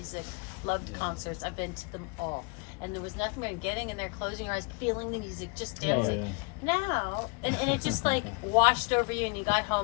loved concerts. I've been to them all. And there was nothing but getting in there, closing your eyes, feeling the music, just Yeah, dancing. yeah. Now, and it just like washed over you and you got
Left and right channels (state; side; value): quieter; right; 31.4 dB